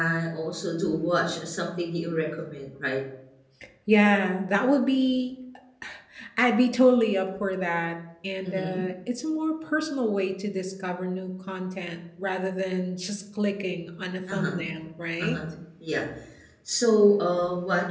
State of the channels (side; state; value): both; identical; correlation 1.00